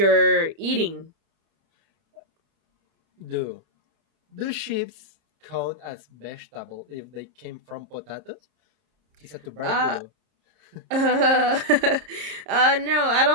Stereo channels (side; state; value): left; late; 30 ms